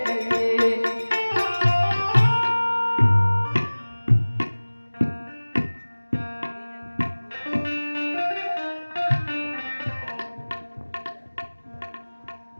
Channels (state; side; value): inverted; both; correlation -1.00